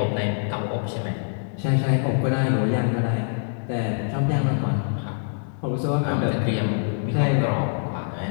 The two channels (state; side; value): silent; right; 62 dB below the other